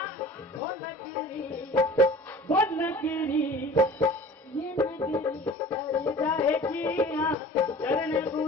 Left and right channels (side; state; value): both; normal; correlation 0.43